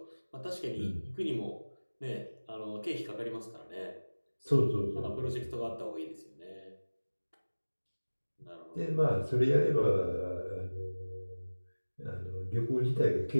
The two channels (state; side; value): inverted; both; correlation -1.00